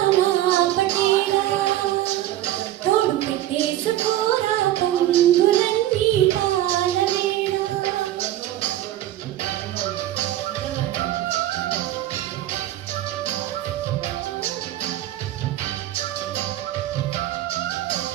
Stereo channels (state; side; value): quieter; left; 13.7 dB